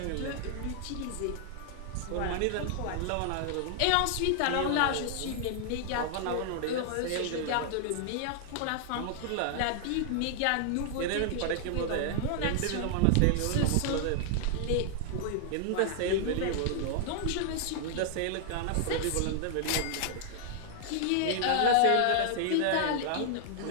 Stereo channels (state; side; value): different; both; correlation -0.01